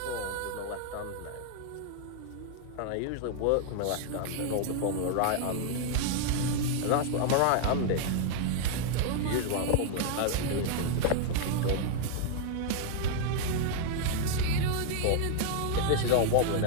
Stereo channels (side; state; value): both; different; correlation 0.00